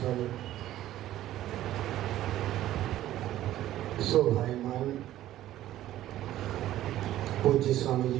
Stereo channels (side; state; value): left; quieter; 13.6 dB